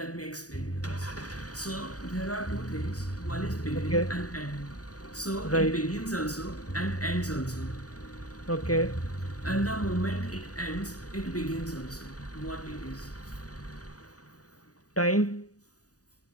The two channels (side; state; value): right; late; 0.67 ms